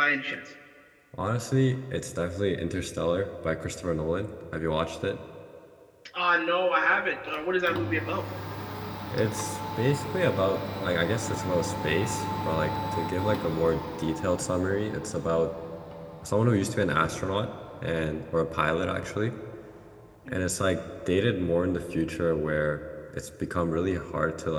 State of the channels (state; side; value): identical; both; correlation 1.00